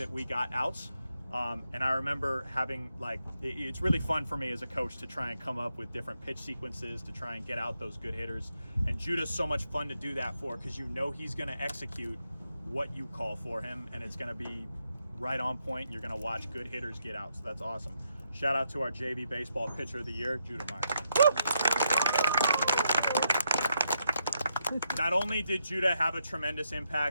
we got outs. And I remember having, like, it's really fun for me as a coach to try and come up with different pitch sequences to try and get out those good hitters. And Judah's so much fun to do that for, because you know he's going to execute what you call for him, and it's going to be right on point, and you're going to watch good hitters get out. So that's awesome. Shout out to our JV Baseball Pitcher of the Year, Judah Myers. Not only did Judah have a tremendous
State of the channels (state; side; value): inverted; both; correlation -0.80